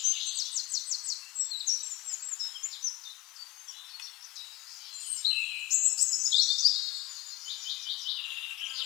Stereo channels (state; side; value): quieter; right; 20.1 dB